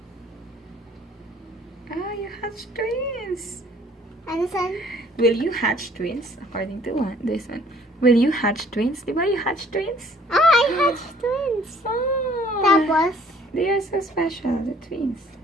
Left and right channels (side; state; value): both; normal; correlation 0.57